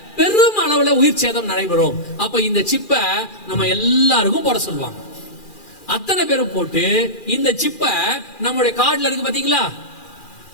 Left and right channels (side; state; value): right; late; 2.4 ms